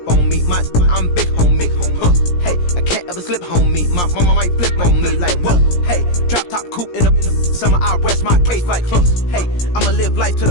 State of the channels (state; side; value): late; right; 17 ms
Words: on me. I'm big homie, hey, I can't ever slip homie. My mama might flip on me. Like, whoa, hey, drop top coupe in the summer, I rest my case. Like, hey, I'ma live life to